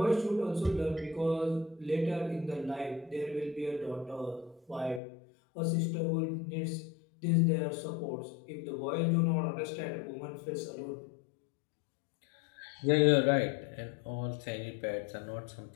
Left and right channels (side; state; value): right; drops out; at 5.0 s